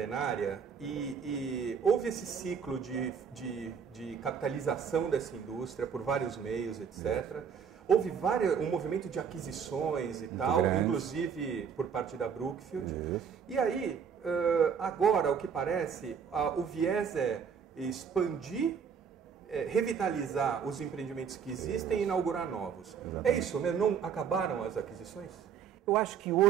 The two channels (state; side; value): quieter; left; 7.0 dB